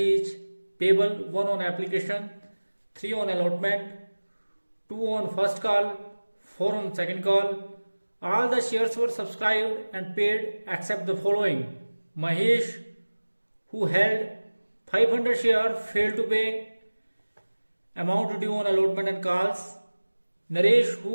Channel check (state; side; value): inverted; both; correlation -1.00